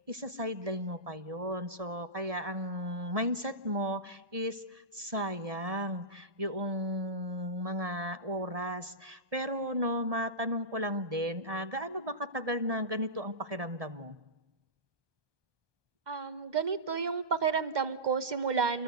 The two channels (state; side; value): late; left; 1.2 ms